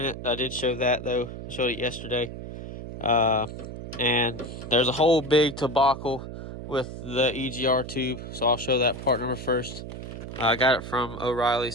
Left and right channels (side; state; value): right; noise; hum, 9 dB below the sound